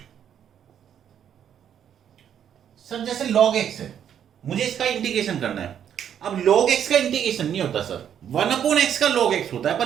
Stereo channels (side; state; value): left; quieter; 9.2 dB